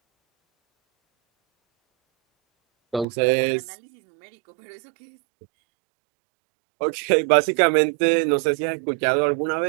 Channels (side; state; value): left; drops out; at 3.1 s